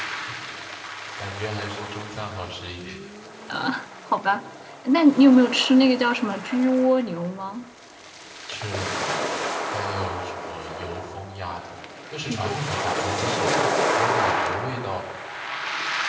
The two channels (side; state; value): both; identical; correlation 1.00